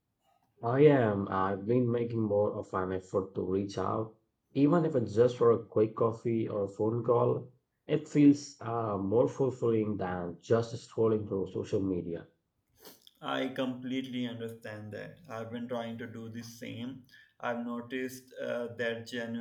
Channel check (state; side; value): identical; both; correlation 1.00